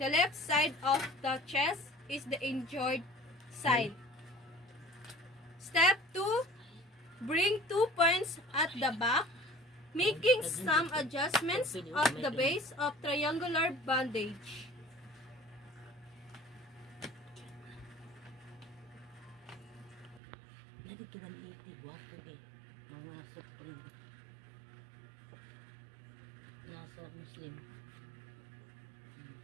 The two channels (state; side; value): drops out; left; at 20.2 s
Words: of the chest is the injured side. Step 2. Bring 2 points at the back, making some adjustments of the base of triangular bandage. Lagi kita liti guwapo eh. Mga Supreme. Nasa Muslim.